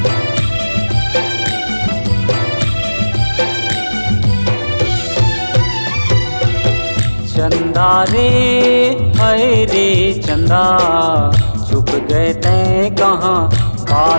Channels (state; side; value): inverted; both; correlation -1.00